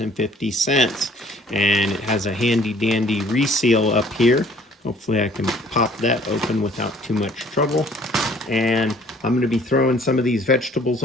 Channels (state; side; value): normal; both; correlation 0.56